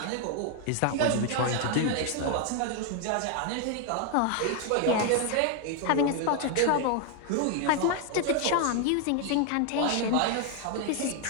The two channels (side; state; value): both; different; correlation 0.00